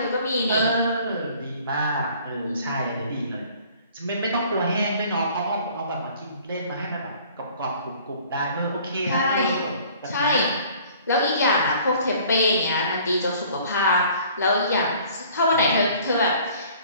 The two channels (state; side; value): inverted; both; correlation -0.53